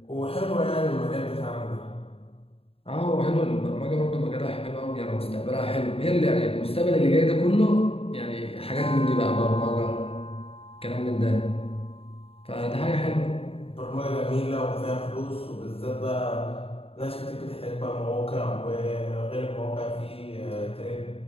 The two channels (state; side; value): late; right; 0.28 ms